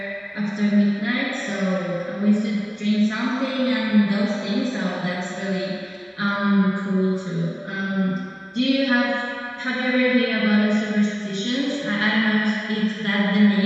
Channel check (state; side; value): identical; both; correlation 1.00